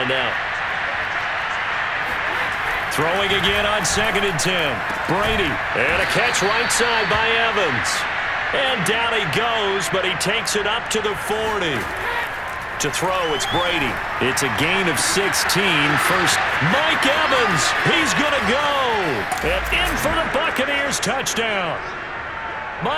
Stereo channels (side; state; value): both; identical; correlation 1.00